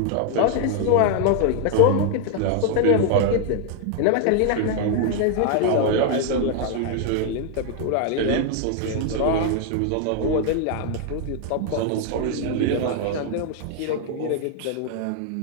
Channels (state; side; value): different; both; correlation 0.00